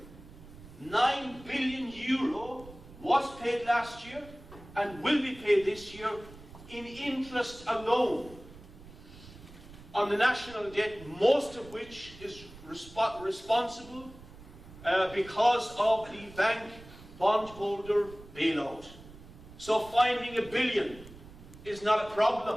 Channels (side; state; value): right; noise; rumble, 18 dB below the sound